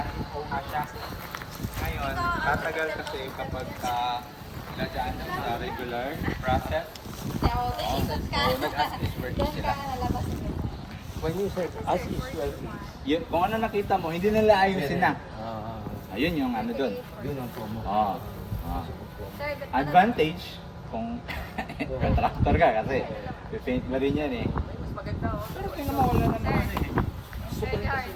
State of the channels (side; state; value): both; identical; correlation 1.00